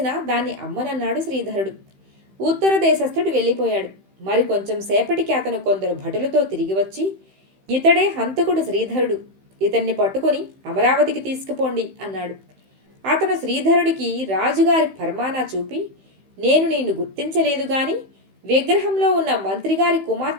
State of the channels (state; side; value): late; left; 15 ms